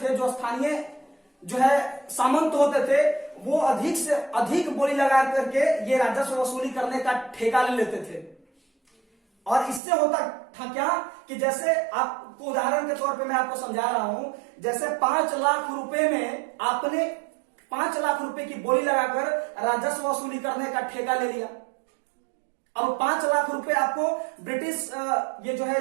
जो स्थानीय जो है सामंत होते थे, वो अधिक से अधिक बोली लगा करके ये राजस्व वसूली करने का ठेका ले लेते थे। और इससे होता था क्या कि जैसे आपको उदाहरण के तौर पे मैं आपको समझा रहा हूं, जैसे 5 लाख रुपए में आपने 5 लाख रुपए की बोली लगाकर राजस्व वसूली करने का ठेका ले लिया। अब 5 लाख रुपए आपको ब्रिटिश ये जो है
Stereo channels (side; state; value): left; drops out; at 9.8 s